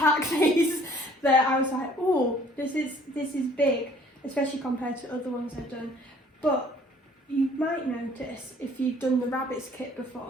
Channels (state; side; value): normal; both; correlation 0.57